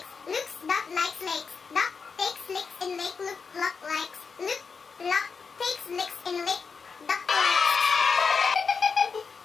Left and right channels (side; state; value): right; quieter; 5.3 dB